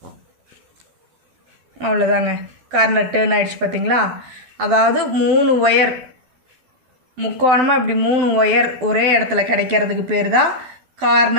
அவ்வளோதாங்க, கார்னர் டேர்ன் ஆகிடுச்சு. பார்த்தீங்களா? அதாவது 3 ஒயர் முக்கோணமாக இப்படி 3 ஒயர் ஒரே இடத்துல கிடைக்கிறதுக்கு பேர் தான்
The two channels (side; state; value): left; late; 12 ms